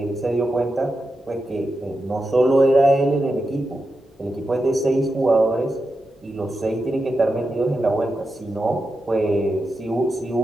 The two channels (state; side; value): normal; both; correlation 0.89